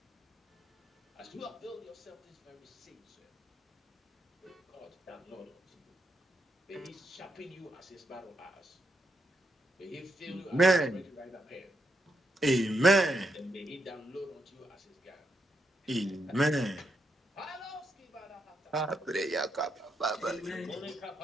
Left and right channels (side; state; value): both; normal; correlation 0.80